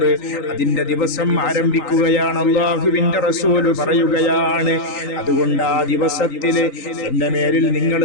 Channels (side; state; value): right; late; 3.8 ms